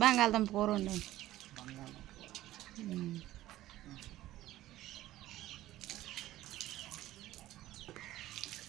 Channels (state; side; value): quieter; left; 15.1 dB